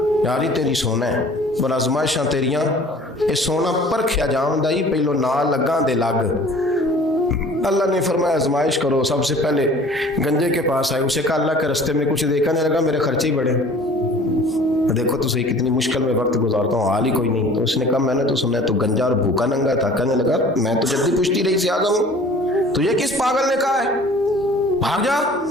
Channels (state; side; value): normal; both; correlation 0.48